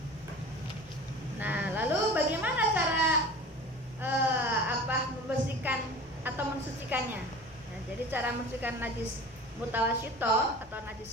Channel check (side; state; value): left; noise; rumble, 24 dB below the sound